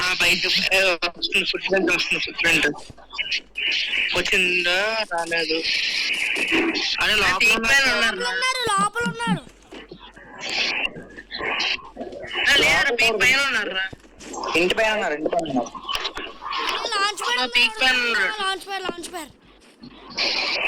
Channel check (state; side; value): identical; both; correlation 1.00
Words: బయట ఫుట్ ప్రింట్ వచ్చిందా రాలేదు. అదే లోపల ఉన్నారు. పైన ఉన్నారు. ఇంటి పైన ఉన్నారు. లాంచ్ ప్యాడ్